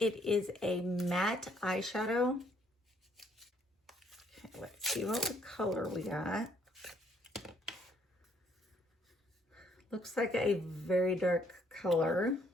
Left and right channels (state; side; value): normal; both; correlation 0.67